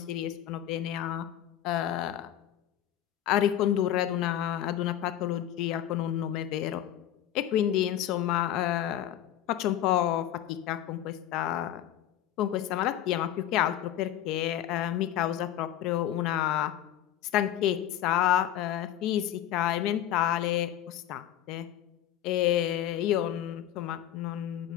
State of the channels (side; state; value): right; quieter; 11.5 dB